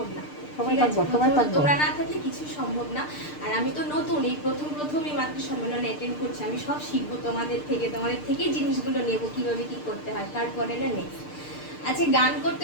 না, তোমরা না থাকলে কিছুই সম্ভব না। আর আমি তো নতুন, এই প্রথমই মাতৃ সম্মেলনে অ্যাটেন্ড করছি, আমি সব শিখবো তোমাদের থেকে জিনিসগুলো নেবো, কিভাবে কি করতে হয়, তারপরে না নেক্সট। আচ্ছা, গান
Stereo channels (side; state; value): right; late; 6.7 ms